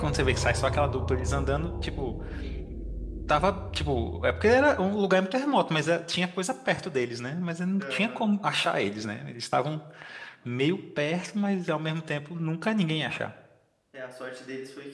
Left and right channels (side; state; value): both; identical; correlation 1.00